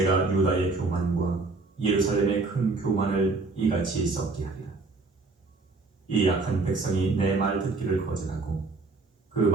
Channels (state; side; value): quieter; left; 3.7 dB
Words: 유다의 교만과 예루살렘의 큰 교만을 이같이 썩게 하리라. 이 약한 백성이 내 말 듣기를 거절하고 그